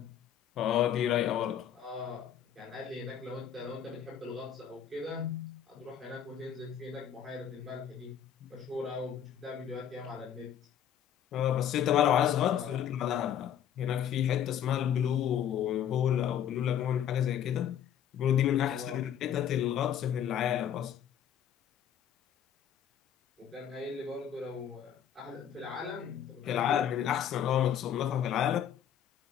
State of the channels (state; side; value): quieter; right; 9.5 dB